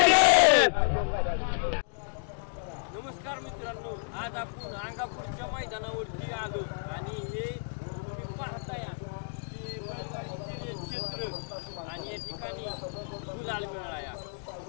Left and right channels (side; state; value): right; silent; digital silence